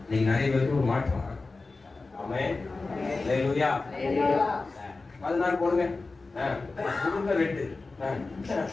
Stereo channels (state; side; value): quieter; right; 3.7 dB